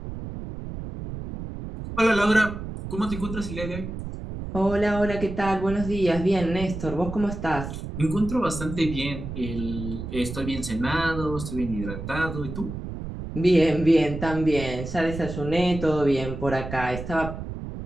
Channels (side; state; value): right; noise; rumble, 8 dB below the sound